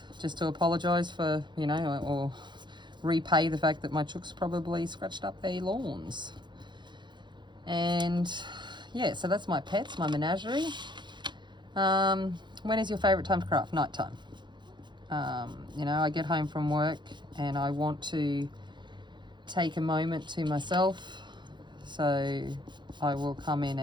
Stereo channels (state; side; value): late; left; 0.22 ms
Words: just to apologise for, you know, or repay the fact that my chooks probably scratched up their lawns. And yeah, so that's my pets, my menagerie. When is your favourite time to craft? Night time. You know, I get home from work and I want to take a moment to myself, so I will come in